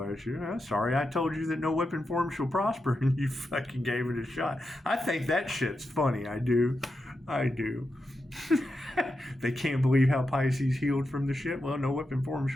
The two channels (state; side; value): normal; both; correlation 0.88